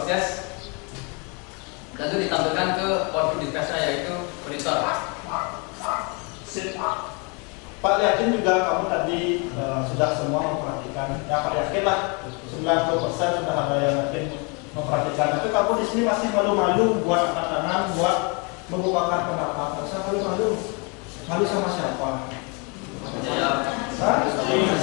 dan itu ditampilkan ke output device-nya yaitu monitor. Sip. Pak yakin juga kamu tadi sudah semua memperhatikan. Ya Pak yakin lah 90% sudah ada yang yakin memperhatikan. Tapi kamu di sini masih malu-malu buat angkat tangan, buat membukakan pendapat. Masa malu-malu? Malu sama siapa? Hah?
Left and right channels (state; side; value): quieter; right; 32.6 dB